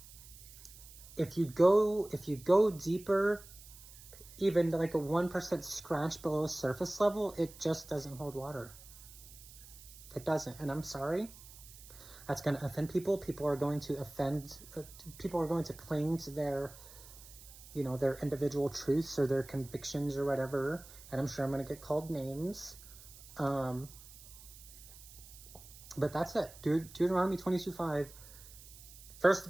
If you go deeper, even like a 1% scratch below surface level, it just doesn't hold water. It doesn't, and I'm sorry. That's going to offend people. People are going to people are going to cling to their, you know, their individual truths or their convictions or whatever, and I'm sure I'm going to get called names. But that's it. Deuteronomy 22:5, first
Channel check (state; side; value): noise; right; hiss, 18 dB below the sound